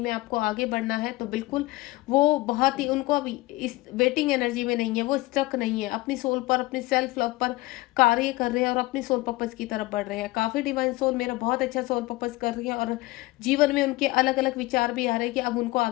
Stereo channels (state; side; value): quieter; right; 20.3 dB